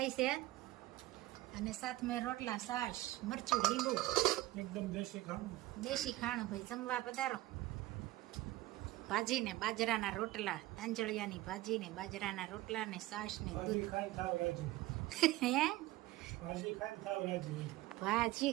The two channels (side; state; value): left; quieter; 17.4 dB